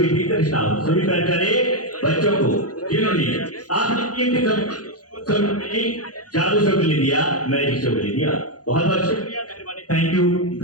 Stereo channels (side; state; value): right; late; 0.68 ms